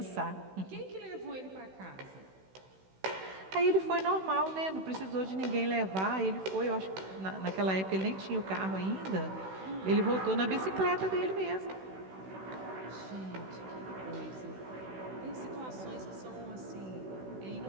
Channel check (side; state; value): left; late; 16 ms